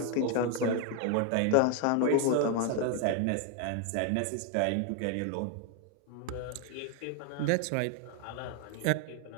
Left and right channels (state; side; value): different; both; correlation 0.01